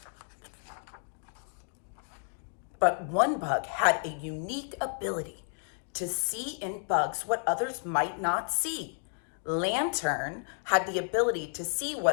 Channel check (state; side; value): silent; right; 57 dB below the other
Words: But one bug had a unique ability to see in bugs what others might not see. Lantern had the ability to see